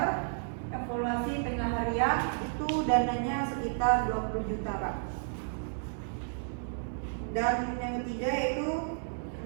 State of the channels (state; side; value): silent; left; 56 dB below the other